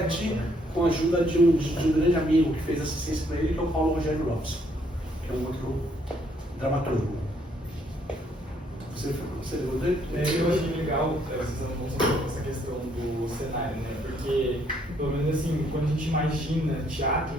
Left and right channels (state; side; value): normal; both; correlation 0.69